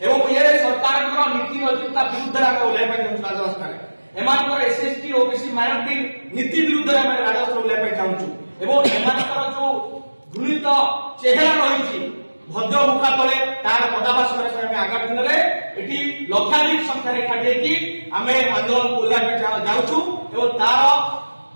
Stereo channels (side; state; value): both; inverted; correlation -1.00